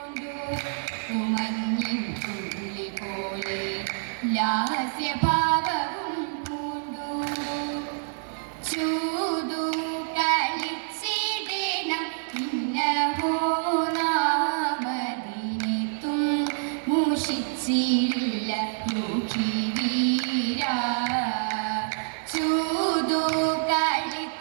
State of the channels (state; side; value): silent; left; digital silence